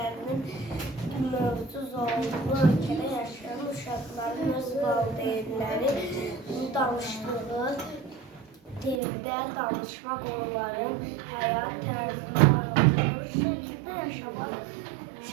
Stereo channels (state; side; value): drops out; left; at 9.0 s